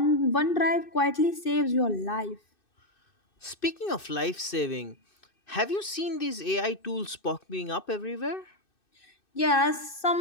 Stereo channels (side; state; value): right; late; 2.6 ms